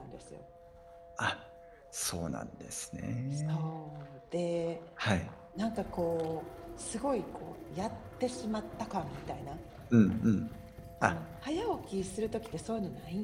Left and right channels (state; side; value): identical; both; correlation 1.00